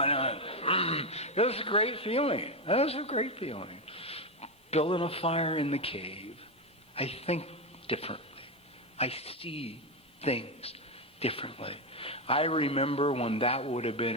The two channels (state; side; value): normal; both; correlation 0.10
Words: it was a great feeling. That was a great feeling. Building a fire in the cave. I think differently. I see things differently. I remember when that would have